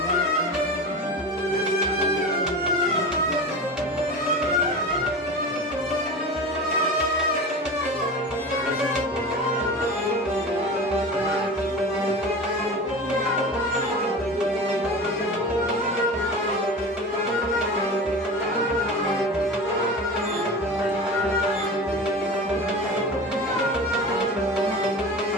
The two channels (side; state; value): both; normal; correlation 0.31